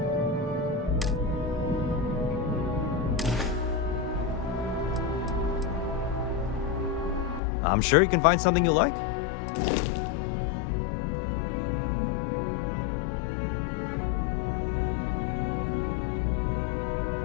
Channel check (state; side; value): drops out; right; at 7.4 s